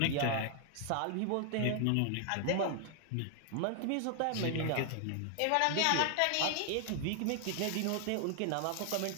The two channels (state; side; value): different; both; correlation 0.00